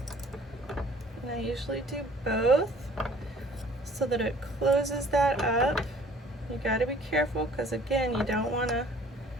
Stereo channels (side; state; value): both; normal; correlation 0.54